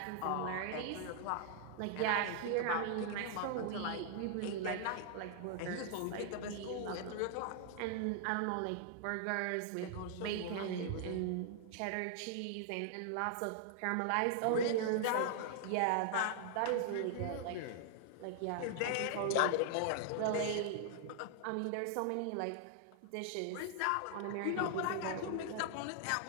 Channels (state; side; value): different; both; correlation 0.00